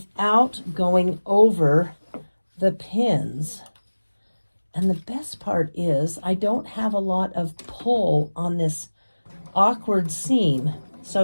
going over the pins. And the best part is I don't have a lot of pull on this awkward seam.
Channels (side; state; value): both; inverted; correlation -1.00